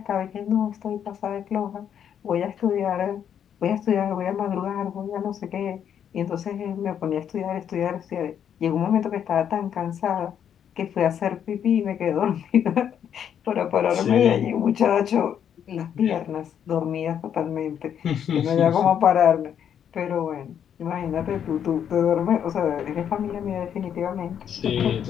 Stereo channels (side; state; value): right; quieter; 8.9 dB